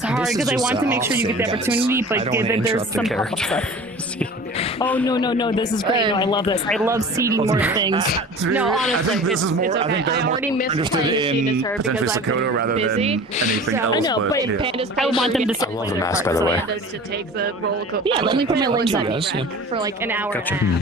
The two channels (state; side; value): normal; both; correlation 0.40